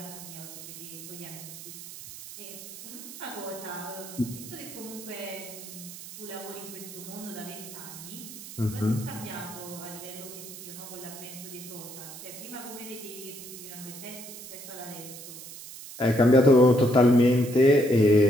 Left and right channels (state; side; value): noise; right; hiss, 13 dB below the sound